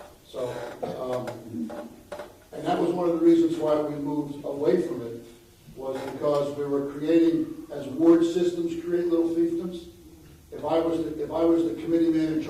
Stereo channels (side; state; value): both; identical; correlation 1.00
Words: So, and that was one of the reasons why we moved away from it, was because we were creating, as ward systems create little fiefdoms. If I was the committee man in